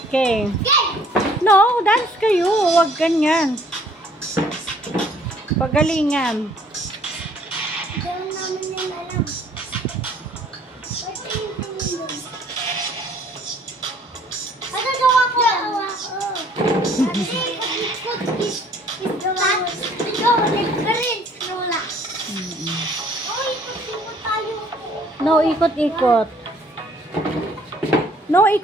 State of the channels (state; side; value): normal; both; correlation 0.58